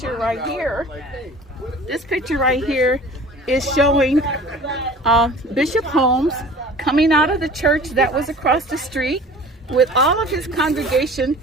right here is showing Bishop Holmes coming out of the church that was across the street with all of his congregation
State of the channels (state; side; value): normal; both; correlation 0.44